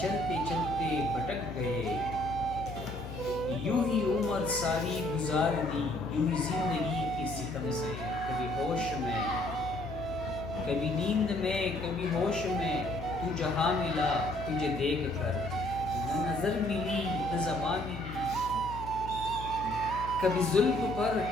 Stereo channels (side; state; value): left; noise; hum, 11 dB below the sound